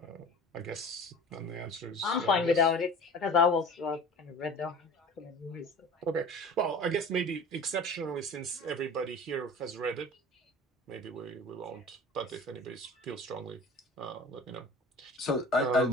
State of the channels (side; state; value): both; normal; correlation 0.40